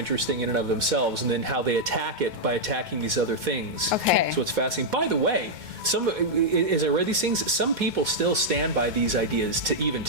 in and of themselves, and then how they attack it by attacking these other things. Okay. So it's fascinating. By the way, as I read these things, some people still stand by these ideas to even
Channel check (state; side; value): late; left; 2.1 ms